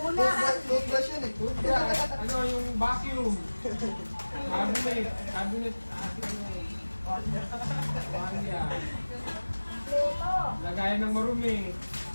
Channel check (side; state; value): both; inverted; correlation -1.00